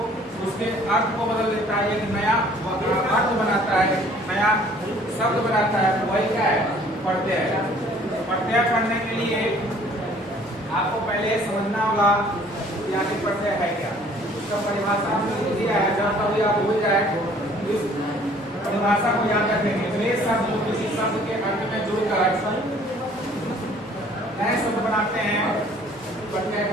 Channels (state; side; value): normal; both; correlation 0.55